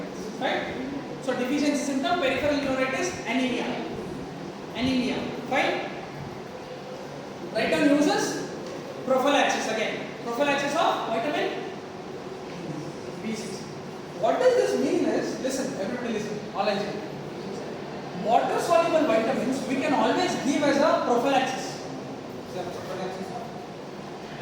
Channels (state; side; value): identical; both; correlation 1.00